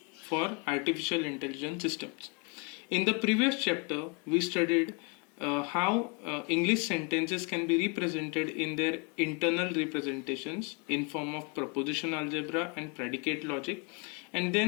for artificial intelligence systems. In the previous chapter, we studied how English sentences can be represented in their internal representations in form of proposition algebra and predicate logic. And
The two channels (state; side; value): quieter; right; 33.2 dB